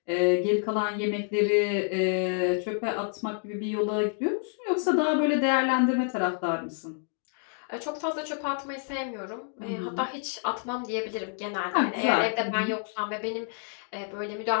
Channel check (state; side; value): silent; right; 56 dB below the other